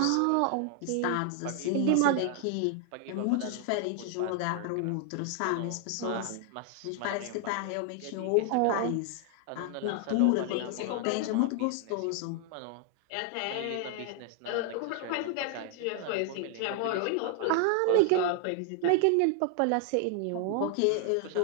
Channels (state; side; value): different; both; correlation 0.00